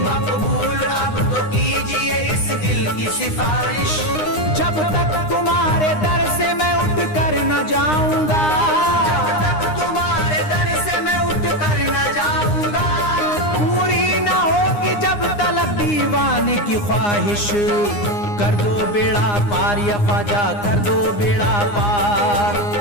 मकबूल अब तो कीजिए इस दिल की सिफारिश। जब तक तुम्हारे दर से मैं उठ कर न जाऊंगा, जब तक तुम्हारे दर से मैं उठ कर न जाऊंगा, पूरी न होगी जब तलक दीवाने की ख्वाहिश। कर दो बेड़ा पार या ख्वाजा, कर दो बेड़ा पार।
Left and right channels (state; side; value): late; right; 9.7 ms